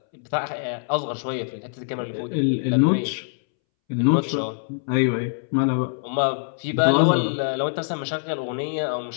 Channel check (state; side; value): silent; right; 63 dB below the other